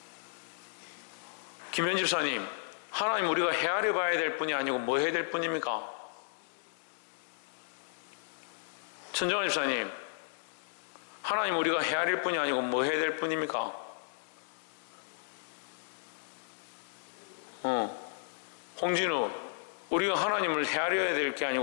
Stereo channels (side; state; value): right; silent; digital silence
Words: 김현 집사님, 하나님 우리가 헤아려 봐야 될 뿐이 아니고 뭐 해야 될 뿐입니까? 천정환 집사님, 하나님 우리가 헤아릴 뿐이 아니고 뭐 해야 될 뿐입니까? 홍진우, 우리가 하나님을 헤아려야 될 게